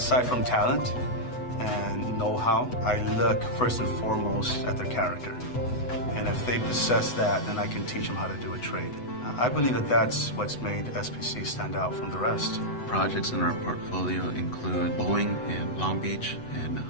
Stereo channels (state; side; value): late; right; 8.0 ms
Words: from talent and know-how, I look first and foremost at their character. And if they possess that, then I can teach them how to do a trade. I believe that that's what's made SPC stand out from the rest. Projects in our portfolio include Boeing in Long Beach and